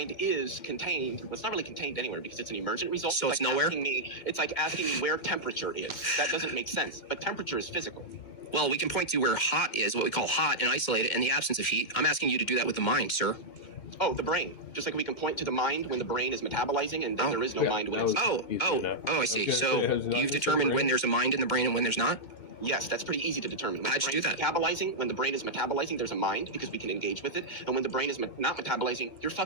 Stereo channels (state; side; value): late; right; 2.4 ms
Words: is contained. Well, it's not really contained anywhere because it's an emergent result. So it's nowhere? It's like asking me where temperature is. That doesn't make sense. But temperature is physical. Well, we can point to where hot is, what we call hot, and isolate it in the absence of heat. I'm asking you to do that with the mind, sir. Oh, the brain. Just like we can point to the mind when the brain is metabolizing, and then there is no mind when it's... I see. So you've determined when there's a mind in the brain and when there's not? Yes, that's pretty easy to determine. How'd you do that? When the brain is metabolizing, there's a mind because we can engage with it. And when the brain is not metabolizing, you're